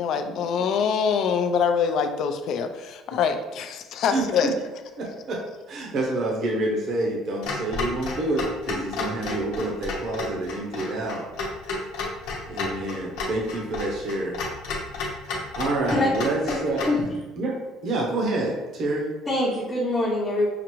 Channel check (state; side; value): normal; both; correlation 0.57